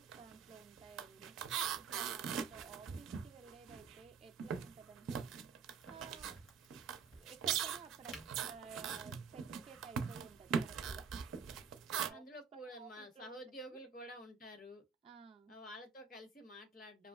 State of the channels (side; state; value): left; quieter; 6.5 dB